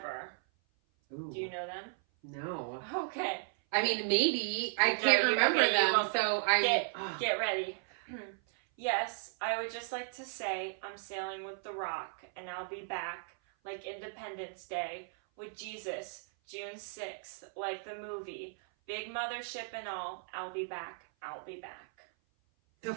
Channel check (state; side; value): silent; left; 54 dB below the other